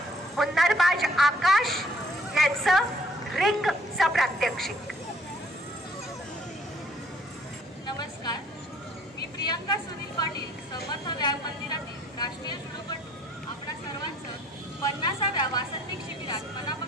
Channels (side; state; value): both; normal; correlation 0.61